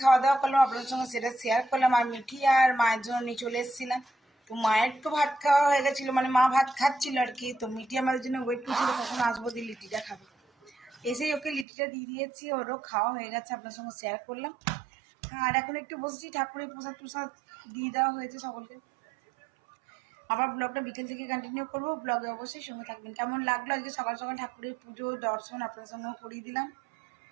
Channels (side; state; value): left; drops out; at 11.7 s